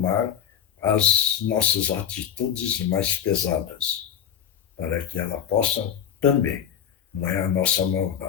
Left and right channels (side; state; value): right; quieter; 9.0 dB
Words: as nossas atitudes mais pesadas, para que ela possa também, não é a nossa